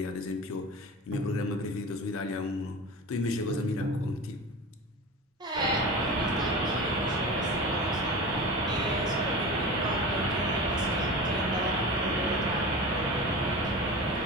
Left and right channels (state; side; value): normal; both; correlation 0.31